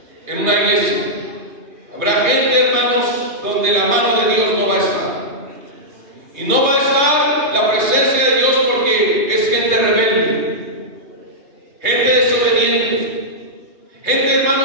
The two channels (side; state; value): left; late; 3.2 ms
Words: en una iglesia. Habrá gente, hermanos, donde la mano de Dios no va a estar. Y no va a estar la presencia de Dios porque es gente rebelde, gente desobediente, gente,